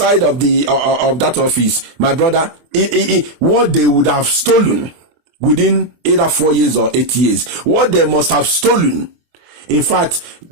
of that office, my brother, what they would have stolen within either 4 years or 8 years, what they must have stolen In fact,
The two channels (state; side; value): late; left; 24 ms